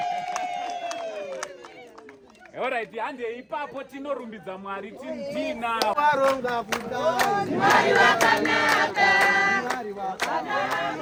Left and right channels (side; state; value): both; identical; correlation 1.00